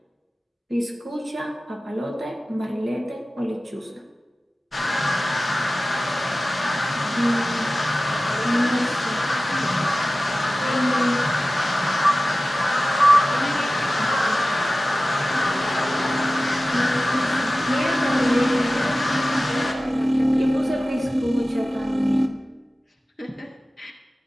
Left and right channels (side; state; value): both; normal; correlation 0.96